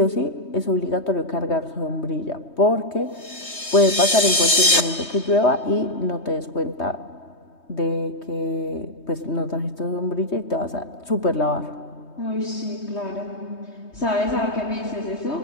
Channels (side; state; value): right; late; 3.2 ms